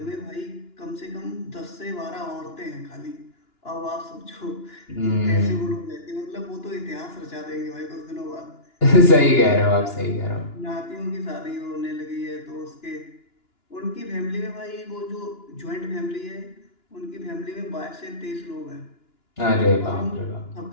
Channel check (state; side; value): late; right; 2.9 ms